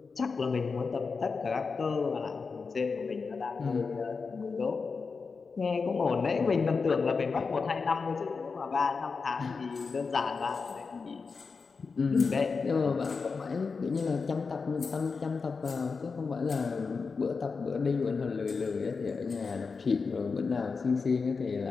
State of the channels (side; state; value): right; quieter; 4.8 dB